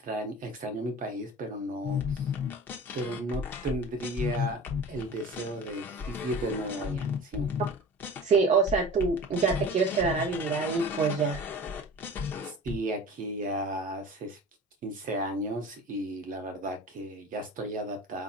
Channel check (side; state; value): both; normal; correlation 0.38